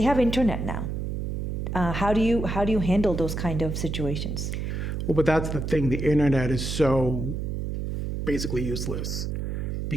have internet now. How do you handle those kind of situations? Well, but that's the thing. The internet is so basically useless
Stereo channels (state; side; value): noise; right; hum, 3 dB below the sound